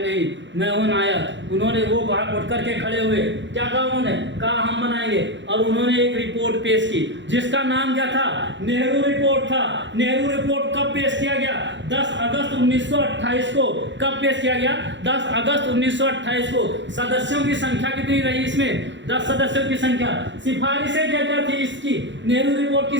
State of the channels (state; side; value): late; left; 0.53 ms